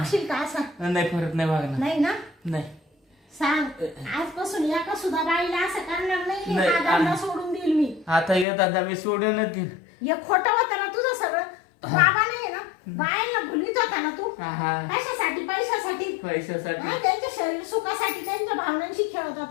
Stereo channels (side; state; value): right; drops out; at 8.5 s